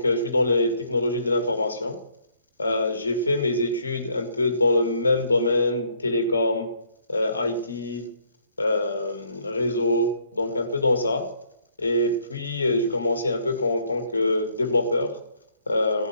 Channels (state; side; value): inverted; both; correlation -0.66